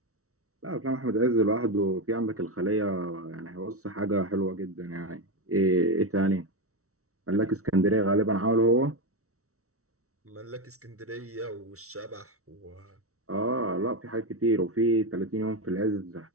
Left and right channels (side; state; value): left; late; 0.64 ms